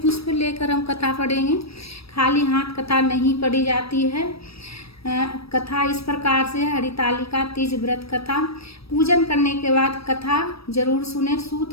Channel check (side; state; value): right; late; 0.77 ms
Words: पुष्प लेकर हम कथा पढ़ेंगे, खाली हाथ कथा नहीं पढ़ी जाती है। कथा इस प्रकार से, हरितालिका तीज व्रत कथा। पूजन करने के बाद कथा जरूर सुने।